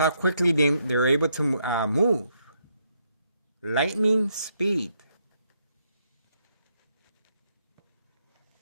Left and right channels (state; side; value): inverted; both; correlation -0.76